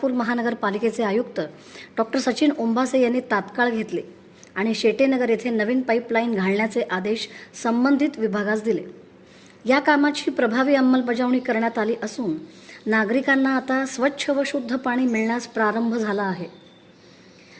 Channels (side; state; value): both; identical; correlation 1.00